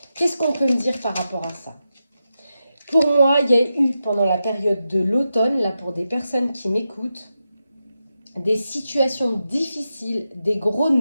Qu'est-ce qu'on peut me dire par rapport à ça? Pour moi, il y a eu pendant la période de l'automne, là pour des personnes qui m'écoutent, des situations difficiles, des gros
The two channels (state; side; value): inverted; both; correlation -0.89